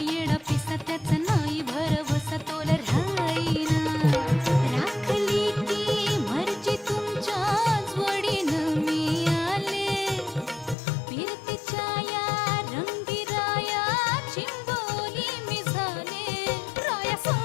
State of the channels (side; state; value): right; drops out; at 10.8 s